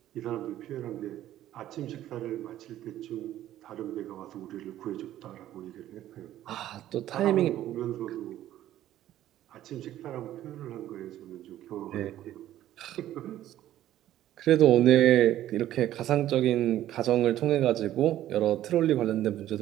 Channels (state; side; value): quieter; left; 13.0 dB